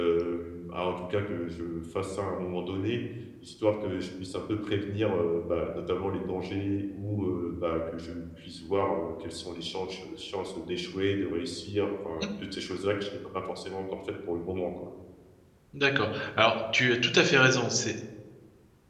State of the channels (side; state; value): both; identical; correlation 1.00